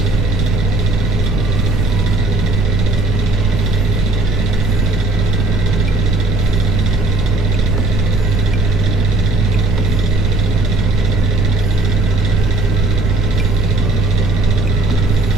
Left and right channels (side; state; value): right; noise; rumble, 5 dB below the sound